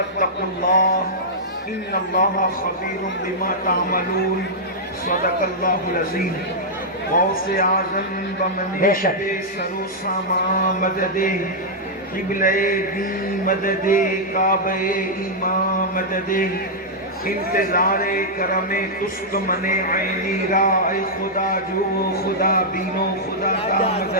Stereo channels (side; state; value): both; normal; correlation -0.08